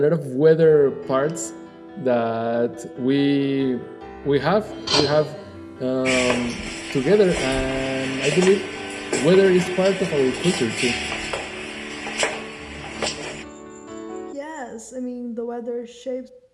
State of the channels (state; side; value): identical; both; correlation 1.00